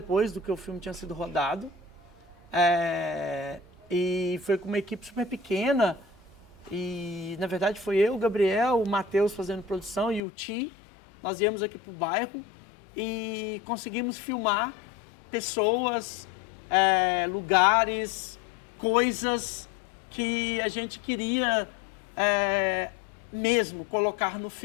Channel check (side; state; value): right; drops out; at 10.2 s